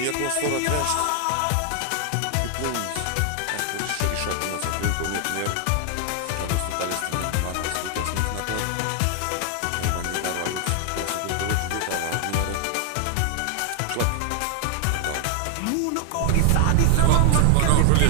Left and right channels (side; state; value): both; different; correlation 0.00